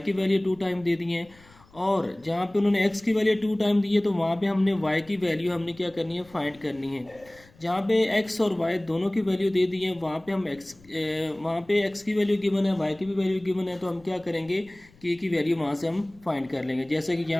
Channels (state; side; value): noise; left; rumble, 27 dB below the sound